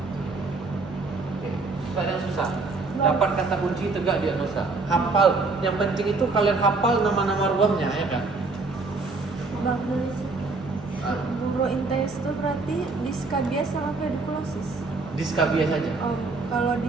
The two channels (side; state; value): left; quieter; 3.7 dB